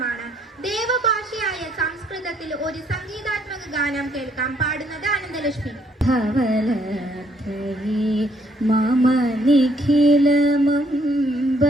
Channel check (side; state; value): both; normal; correlation 0.68